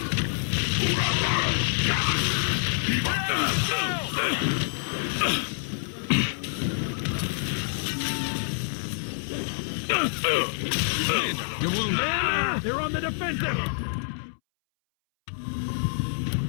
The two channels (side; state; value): right; silent; 60 dB below the other